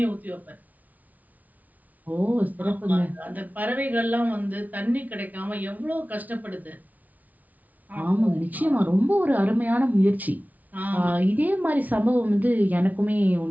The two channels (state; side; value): late; left; 0.075 ms